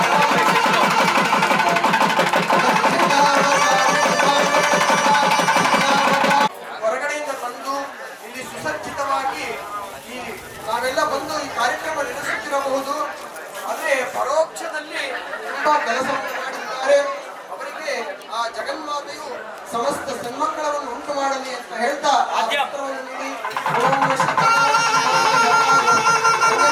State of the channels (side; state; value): both; identical; correlation 1.00